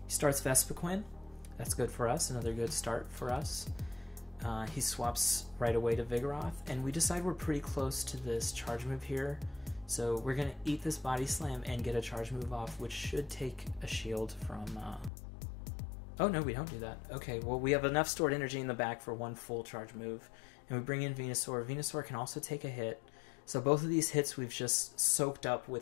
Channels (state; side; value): drops out; right; at 15.1 s